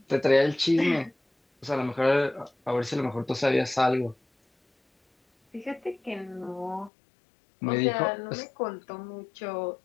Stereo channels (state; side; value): drops out; right; at 6.9 s